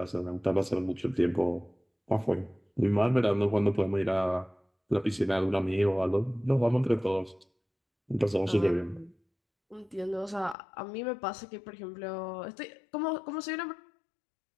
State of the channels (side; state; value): right; drops out; at 10.6 s